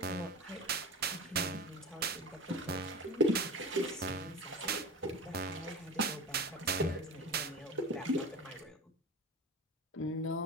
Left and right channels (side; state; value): both; normal; correlation 0.29